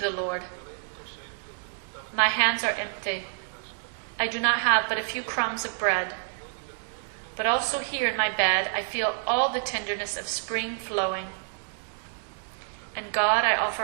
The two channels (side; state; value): left; silent; digital silence